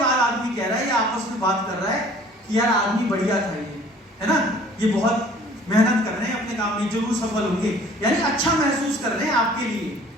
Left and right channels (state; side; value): normal; both; correlation 0.52